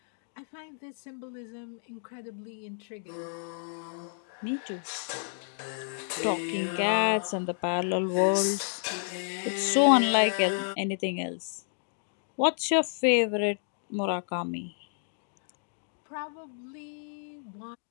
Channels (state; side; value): silent; right; digital silence